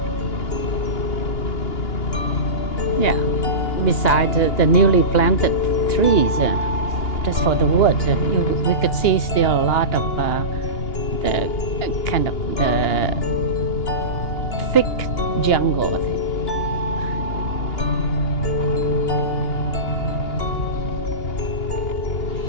Yeah, beside the newly planted trees, just for the wood, we could see still a lot of the kind of the thick jungle.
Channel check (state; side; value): late; right; 2.9 ms